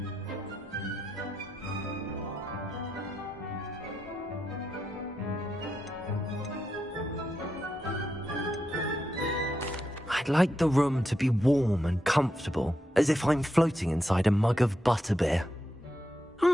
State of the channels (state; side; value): normal; both; correlation 0.85